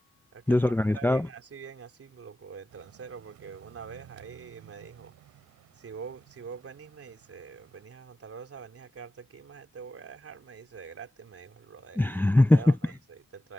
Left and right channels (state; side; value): normal; both; correlation 0.94